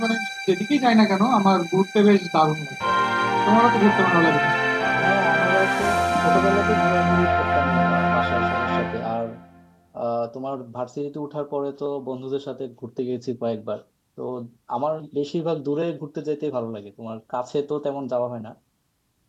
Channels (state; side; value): identical; both; correlation 1.00